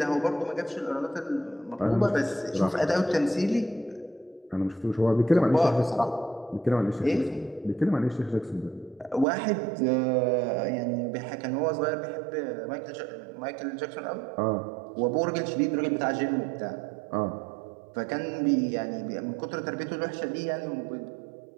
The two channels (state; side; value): drops out; left; at 9.2 s